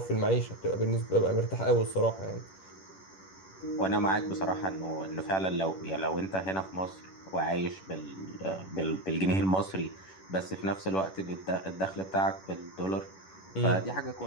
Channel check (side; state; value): right; late; 11 ms